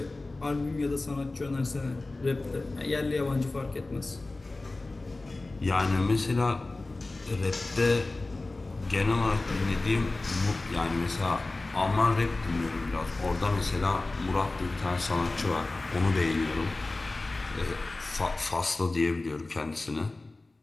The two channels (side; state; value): right; quieter; 3.1 dB